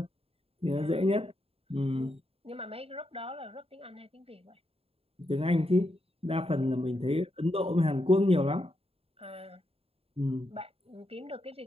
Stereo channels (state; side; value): late; left; 0.28 ms